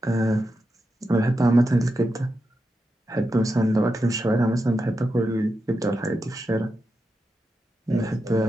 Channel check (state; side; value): normal; both; correlation 0.88